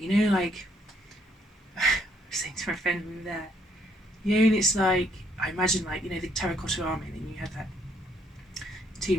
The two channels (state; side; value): normal; both; correlation 0.69